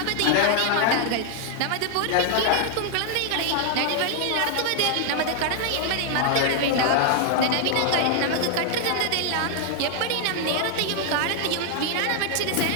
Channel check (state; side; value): different; both; correlation 0.00